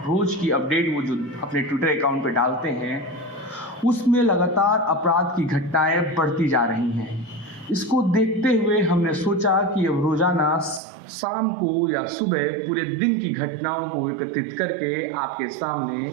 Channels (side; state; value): left; drops out; at 10.8 s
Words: रोज़ की अपडेट वो जो अपने ट्विटर अकाउंट पे डालते हैं, उसमें लगातार अपराध की घटनाएं बढ़ती जा रही हैं। इसको देखते हुए हमने सोचा कि अब रोज़ाना शाम को या सुबह पूरे दिन की घटनाओं को एकत्रित करके आपके सामने